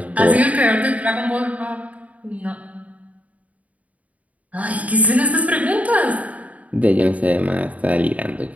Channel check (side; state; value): left; late; 0.070 ms